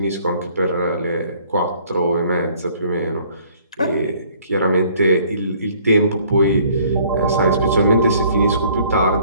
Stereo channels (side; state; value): both; inverted; correlation -0.59